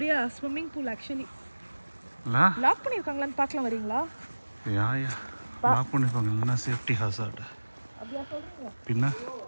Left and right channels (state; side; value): inverted; both; correlation -1.00